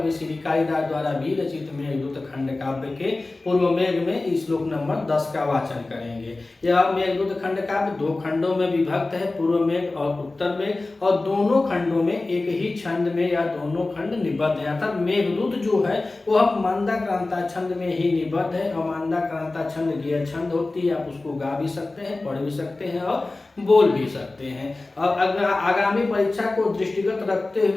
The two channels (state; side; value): quieter; right; 3.2 dB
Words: श्री कालिदास द्वारा भी रचित मेघदूत खंड काव्य के पूर्व मेघ में श्लोक नंबर 10 का वाचन करेंगे। यह मेघदूत खंड काव्य दो खंडों में विभक्त है, पूर्व मेघ और उत्तर मेघ, और दोनों खंडों में एक ही छंद में या दोनों खंड निबद्ध है। अर्थात मेघदूत जो है वह मंदाक्रांता छंद में ही निबद्ध है, और मंदाक्रांता छंद गियर छंद होती है। आप उसको गा भी सकते हैं, पढ़ भी सकते हैं और बोल भी सकते हैं। और अगर आगामी परीक्षा को दृष्टिगत रखते